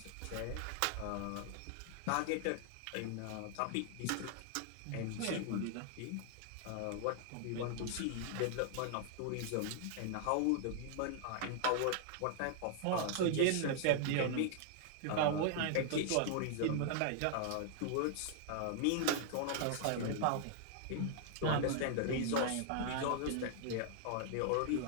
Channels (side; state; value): both; different; correlation -0.01